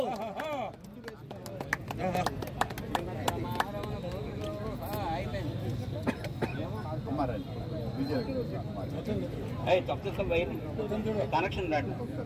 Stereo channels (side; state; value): both; identical; correlation 1.00